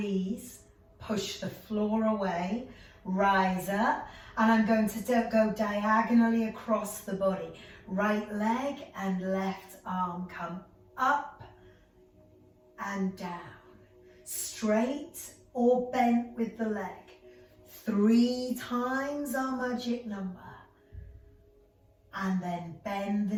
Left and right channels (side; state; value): both; identical; correlation 1.00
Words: push the floor away, rise up, and I'm going to go diagonally across the body. Right leg and left arm come up and down. Straight or bent with the leg. 3 times our magic number. And then bend the